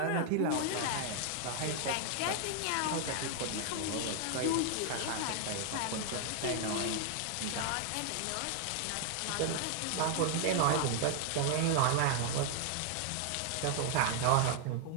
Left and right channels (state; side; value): different; both; correlation 0.00